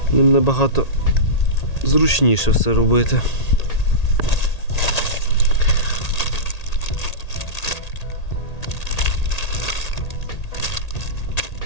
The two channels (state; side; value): late; right; 1.8 ms